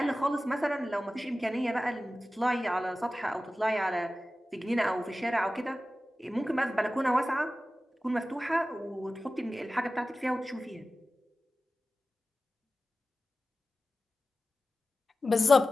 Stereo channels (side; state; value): both; normal; correlation 0.95